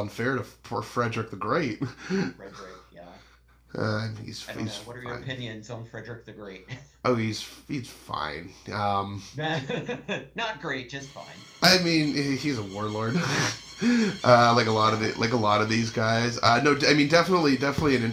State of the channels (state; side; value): identical; both; correlation 1.00